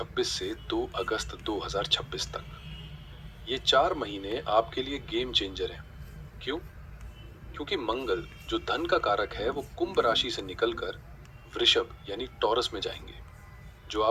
से 2 अगस्त 2026 तक। ये 4 महीने आपके लिए गेम चेंजर हैं। क्यों? क्योंकि मंगल, जो धन का कारक है, वो कुंभ राशि से निकलकर वृषभ यानी टॉरस में जाएंगे, जो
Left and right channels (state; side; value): identical; both; correlation 1.00